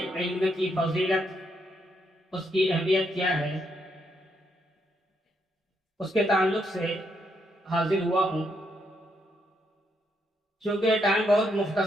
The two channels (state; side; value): normal; both; correlation 0.77